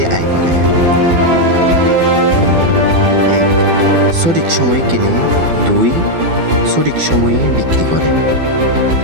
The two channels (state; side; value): late; left; 12 ms